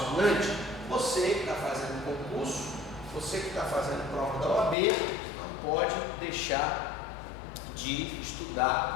Você que está fazendo concurso, você que está fazendo prova da OAB, não pode deixar de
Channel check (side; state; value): right; drops out; at 4.8 s